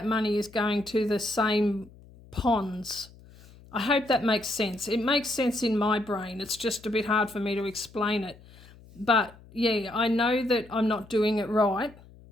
money is going to the same ponds. I hope that makes sense. It makes sense in my brain. It's just a bit hard for me to explain it. But yeah, I know that I'm not doing it right,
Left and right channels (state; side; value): noise; left; hum, 23 dB below the sound